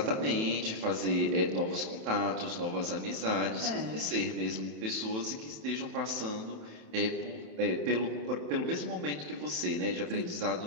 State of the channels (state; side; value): late; left; 27 ms